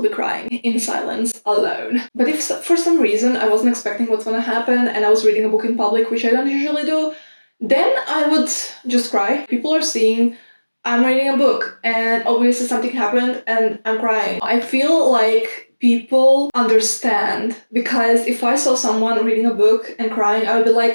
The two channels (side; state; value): both; inverted; correlation -1.00